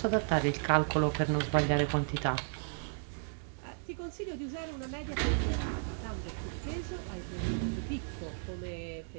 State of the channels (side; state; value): left; silent; digital silence